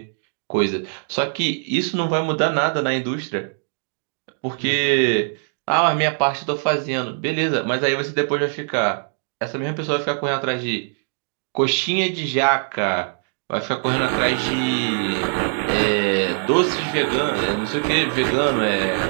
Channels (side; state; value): left; silent; digital silence